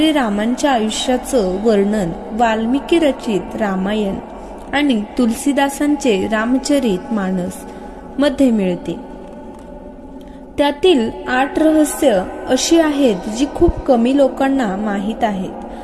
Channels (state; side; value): identical; both; correlation 1.00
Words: आयुष्याचं वर्णन वाल्मिकी रचित रामायण आणि तुलसीदासांचे रामचरित मानस मध्ये मिळते. त्यातील 8 रहस्य अशी आहेत जी खूप कमी लोकांना माहीत आहेत.